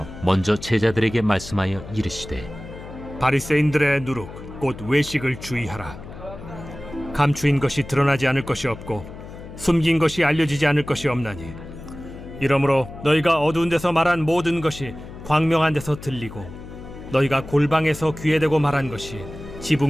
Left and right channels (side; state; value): left; noise; hum, 14 dB below the sound